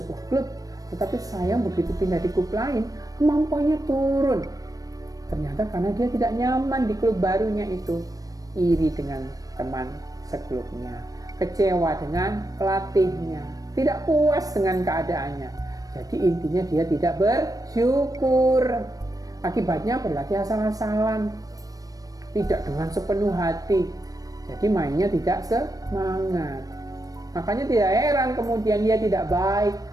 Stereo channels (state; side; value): late; left; 0.18 ms